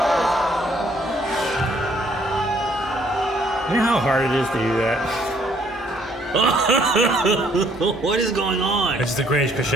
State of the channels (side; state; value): both; normal; correlation 0.65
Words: You know how hard it is to do that? What is going on? It's the greatest